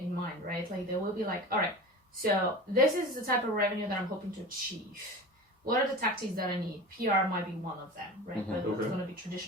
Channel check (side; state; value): both; normal; correlation 0.33